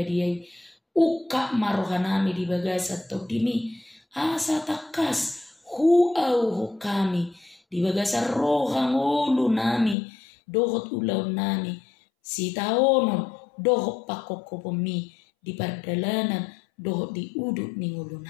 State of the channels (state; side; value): drops out; right; at 10.0 s